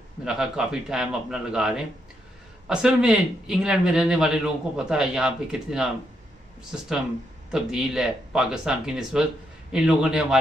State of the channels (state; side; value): normal; both; correlation 0.79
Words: मेरा ख्याल काफ़ी टाइम अपना लगा रहे हैं। असल में इंग्लैंड में रहने वाले लोगों को पता है यहाँ पे कितना सिस्टम तब्दील है पाकिस्तान की निस्बत। इन लोगों ने